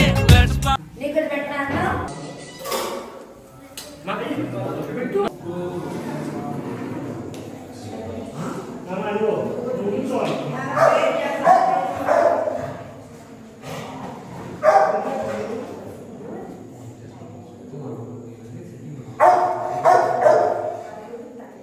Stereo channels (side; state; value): both; identical; correlation 1.00